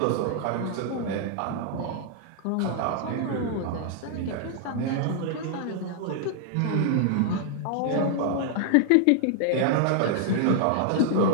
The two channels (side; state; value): both; different; correlation -0.01